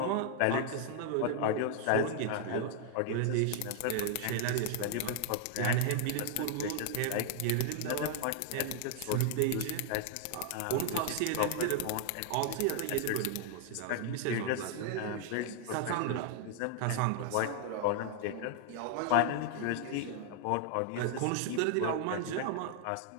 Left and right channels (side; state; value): both; different; correlation 0.00